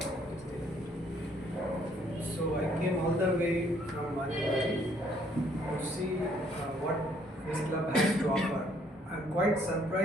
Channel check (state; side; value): normal; both; correlation 0.65